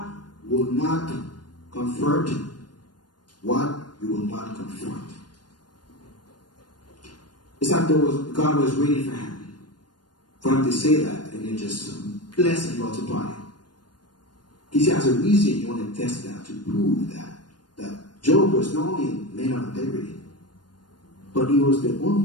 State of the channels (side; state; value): right; late; 0.70 ms